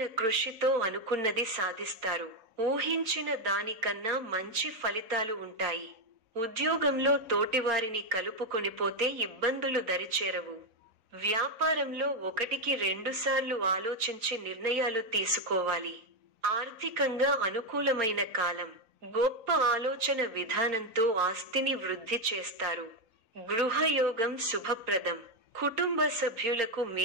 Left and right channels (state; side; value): late; left; 3.9 ms